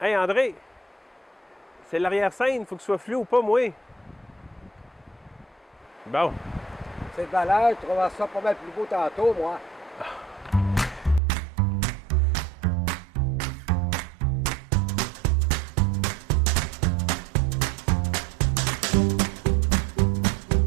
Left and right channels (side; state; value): left; drops out; at 11.2 s